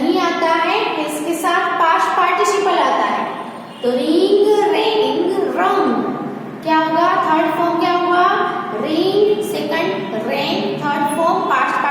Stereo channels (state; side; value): identical; both; correlation 1.00